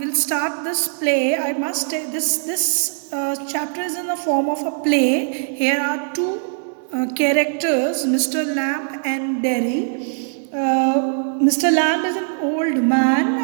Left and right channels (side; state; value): left; silent; digital silence